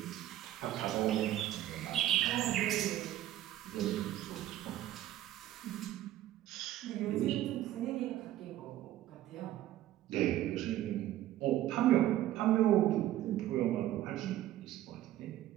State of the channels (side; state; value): left; quieter; 13.5 dB